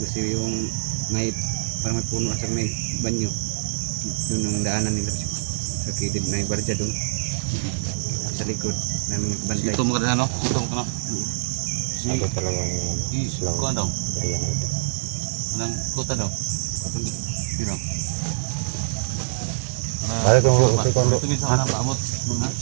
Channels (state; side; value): silent; left; digital silence